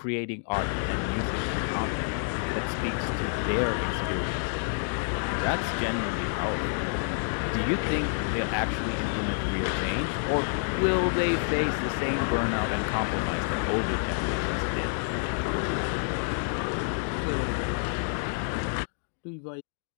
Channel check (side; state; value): right; silent; digital silence